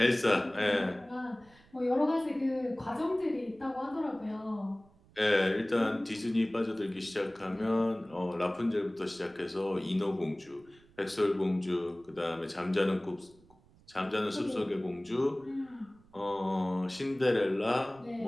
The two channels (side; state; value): right; noise; rumble, 28 dB below the sound